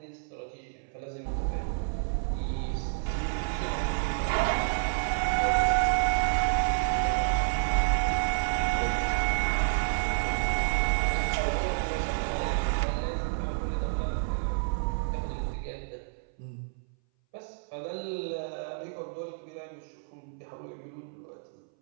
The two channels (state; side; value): silent; left; 58 dB below the other